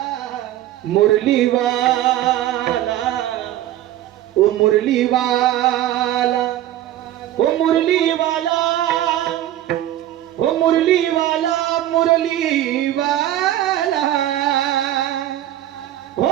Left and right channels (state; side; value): quieter; left; 13.2 dB